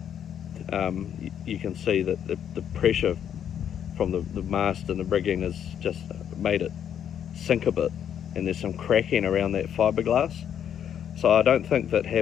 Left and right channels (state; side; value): quieter; right; 9.1 dB